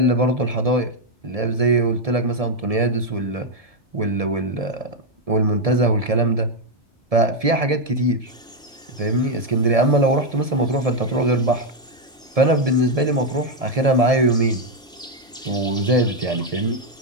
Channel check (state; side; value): normal; both; correlation 0.02